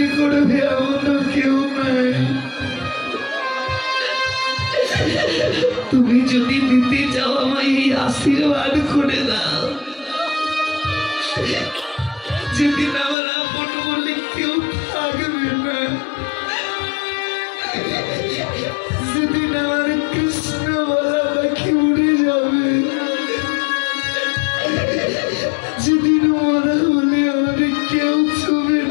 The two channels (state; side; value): drops out; right; at 13.2 s